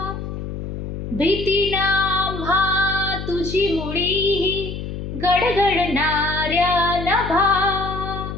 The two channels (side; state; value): left; noise; hum, 7 dB below the sound